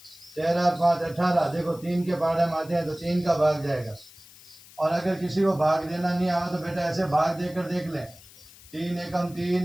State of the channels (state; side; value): noise; left; hiss, 22 dB below the sound